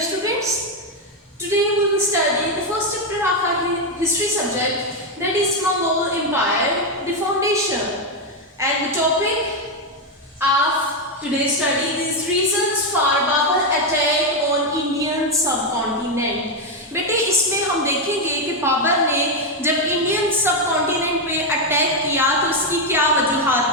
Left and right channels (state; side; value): normal; both; correlation 0.05